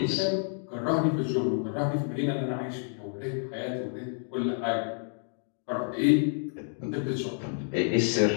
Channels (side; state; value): right; silent; digital silence